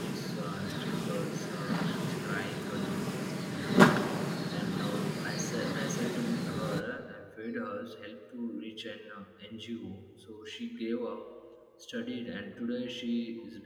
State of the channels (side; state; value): both; identical; correlation 1.00